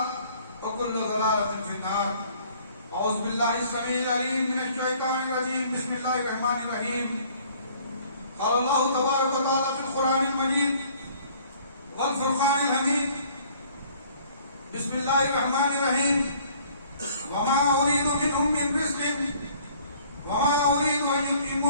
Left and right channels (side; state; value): both; inverted; correlation -0.56